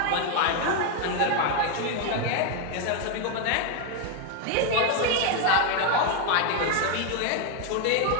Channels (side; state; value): both; different; correlation 0.01